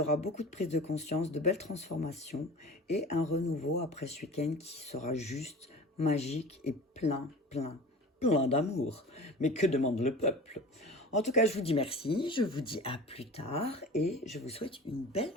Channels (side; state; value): both; normal; correlation 0.38